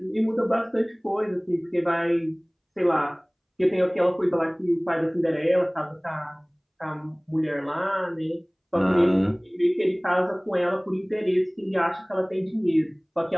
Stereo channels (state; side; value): identical; both; correlation 1.00